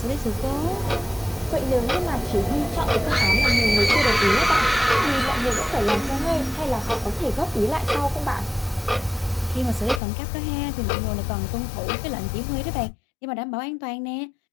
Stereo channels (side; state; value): right; drops out; at 10.0 s